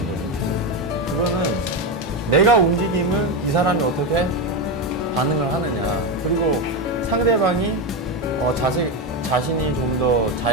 그거는 내가 움직임을 이 사람이 어떻게 반응을 하느냐 그리고 상대방이 자신이 좀 더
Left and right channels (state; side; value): normal; both; correlation 0.12